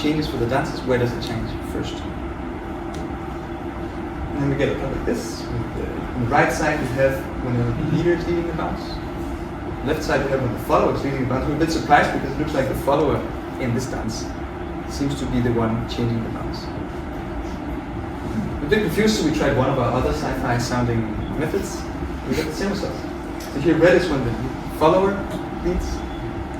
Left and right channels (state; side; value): identical; both; correlation 1.00